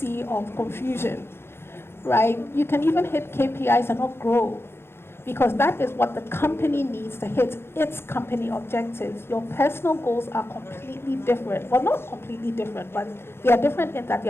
of confusion. Right? You can even hit KPIs and not grow, because that is what the company needs to hit its company objectives. Your personal goals are completely different. Well, not completely different, but they are different in that they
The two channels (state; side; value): late; right; 0.12 ms